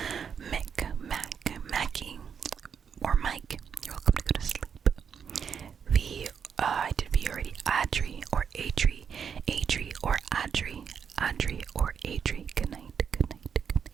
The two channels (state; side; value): quieter; left; 7.2 dB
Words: Mick, Mac, Mackie or Mike. You're welcome to go to sleep. V, I did V already. Adri or Adri, Adri or Adri, Adri or Adri. Good night, good night, good